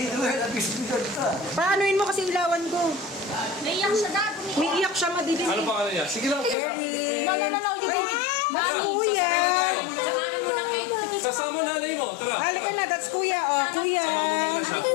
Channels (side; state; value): right; drops out; at 6.6 s